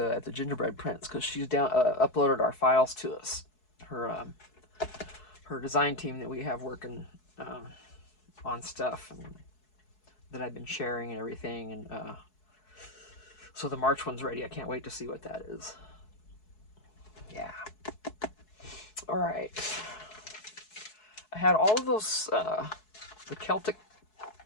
at the Gingerbread Prince, because she's uploaded our files to us. Her design team that we have working on stuff and that I've been sharing and everything, and so the March one's ready. I can't wait to see what that is. Yeah. All right. I had all of those the Celtic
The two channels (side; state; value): right; late; 4.7 ms